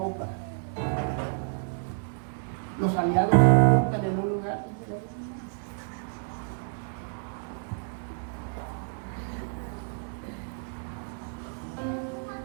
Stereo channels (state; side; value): silent; left; digital silence